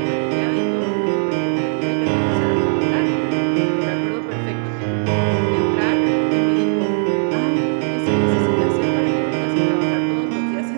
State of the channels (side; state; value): left; silent; 56 dB below the other